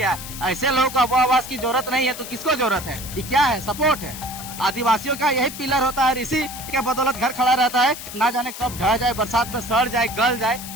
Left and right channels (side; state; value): left; noise; hiss, 11 dB below the sound